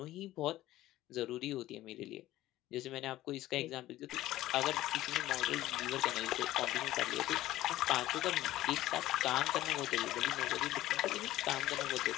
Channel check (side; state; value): right; quieter; 15.4 dB